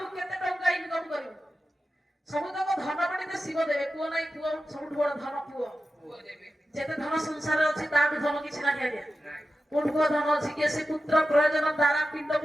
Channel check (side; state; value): both; normal; correlation 0.92